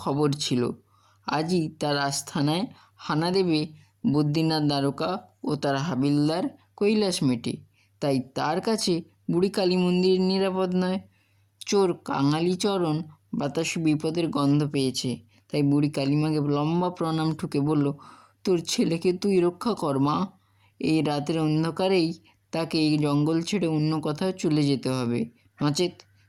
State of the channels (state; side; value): identical; both; correlation 1.00